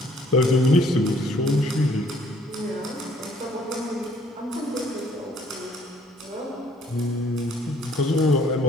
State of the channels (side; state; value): both; normal; correlation 0.61